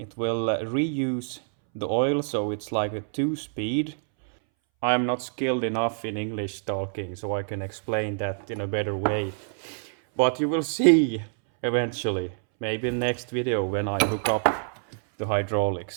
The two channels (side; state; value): left; silent; 61 dB below the other